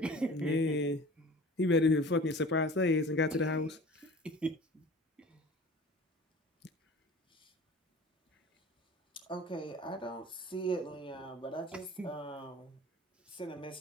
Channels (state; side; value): normal; both; correlation 0.41